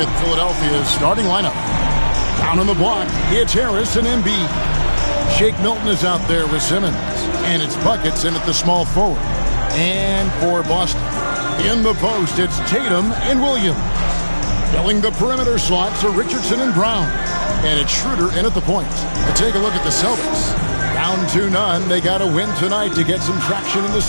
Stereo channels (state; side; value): inverted; both; correlation -1.00